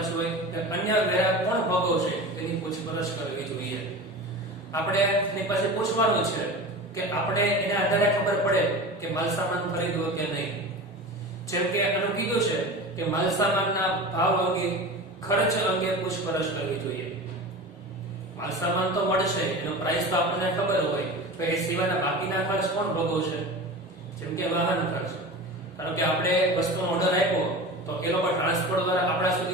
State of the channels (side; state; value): both; normal; correlation 0.32